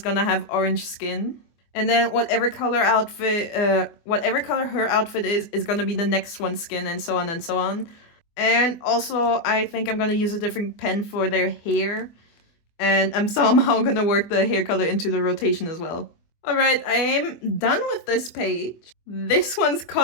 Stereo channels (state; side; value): late; right; 24 ms